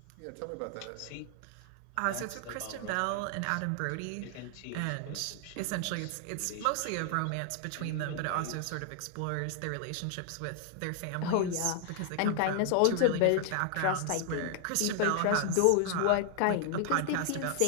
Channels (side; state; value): both; different; correlation 0.00